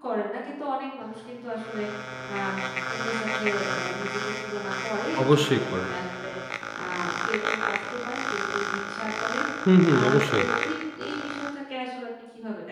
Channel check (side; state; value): both; identical; correlation 1.00